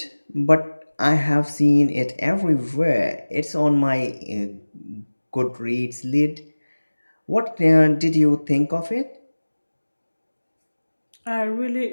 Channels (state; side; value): inverted; both; correlation -1.00